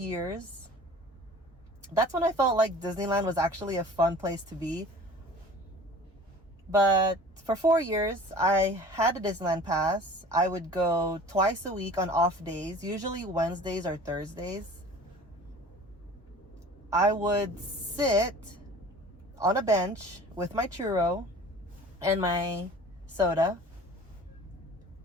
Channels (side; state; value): both; normal; correlation 0.43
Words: That's when I felt like Disneyland was actually a fun place to be. But for 4 years, I had a Disneyland pass. I would go twice a week on off days, usually Wednesdays or Thursdays. I would sit on a bench with my churro and my soda.